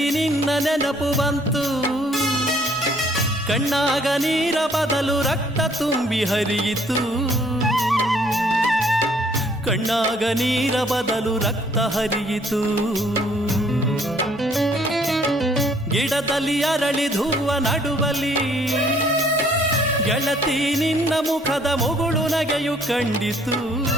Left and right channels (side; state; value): both; normal; correlation 0.62